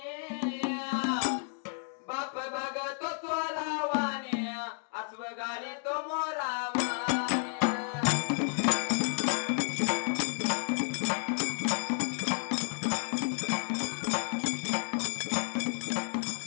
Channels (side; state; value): right; silent; 57 dB below the other